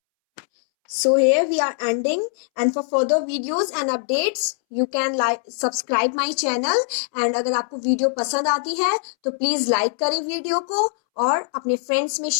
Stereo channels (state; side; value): silent; right; 64 dB below the other